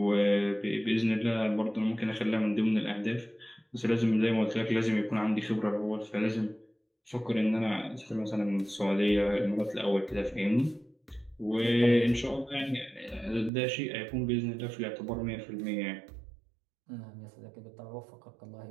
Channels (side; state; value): left; drops out; at 13.5 s